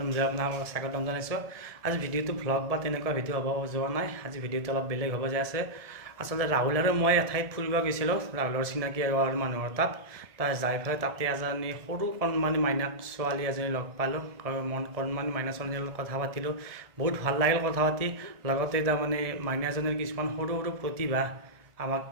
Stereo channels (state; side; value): late; left; 1.7 ms